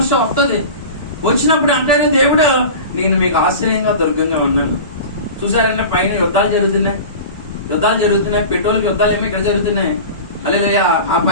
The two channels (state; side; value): inverted; both; correlation -0.34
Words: వస్తుంది. వచ్చినప్పుడు అంటాడు దేవుడు, నేను మీకు ఆశ్రయంగా దుర్గంగా ఉన్నాను. చూసారంటే పైన యుద్ధాలు జరుగుతున్నాయి, పెట్రోల్కి యుద్ధాలు ఏమో ఇక్కడ జరుగుతున్నాయి. హల్లెలూయా. ఆ